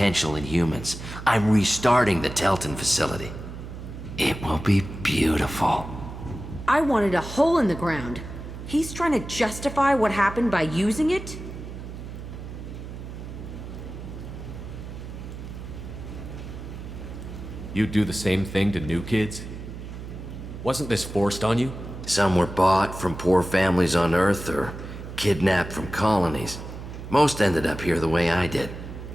in humans. I'm restarting the Telton facility. It will be beautiful. I wanted a hole in the ground. He's trying to justify what happened by using it? You do the same thing to new kids? Wasn't this forced on you? Some were bought from poor families on Earth or kidnapped from colonies. Most ended up here the way I did.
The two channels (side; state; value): right; noise; hum, 10 dB below the sound